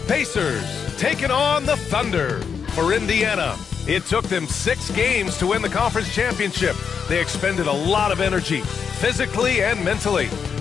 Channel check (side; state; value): right; quieter; 6.6 dB